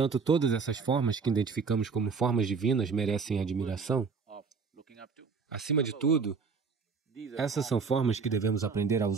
todas essas formas que identificamos como formas divinas merecem admiração. Acima de tudo, essas são formas que devemos aprender a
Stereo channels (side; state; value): left; quieter; 5.2 dB